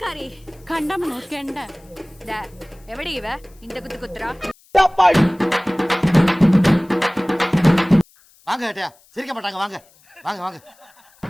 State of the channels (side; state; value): left; noise; hiss, 30 dB below the sound